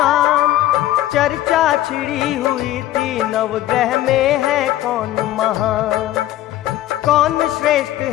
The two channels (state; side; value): quieter; right; 14.2 dB